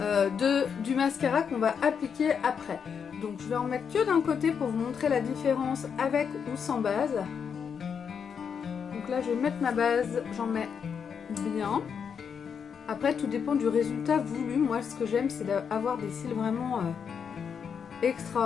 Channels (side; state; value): right; quieter; 6.8 dB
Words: du mascara qu'on va appliquer après. Donc je vais en mettre que d'un côté pour vous montrer la différence avec ou sans base. Donc là je vais mettre ma base, j'en mets bien. Après tout dépend du résultat voulu. Moi ce que j'aime c'est d'avoir des cils vraiment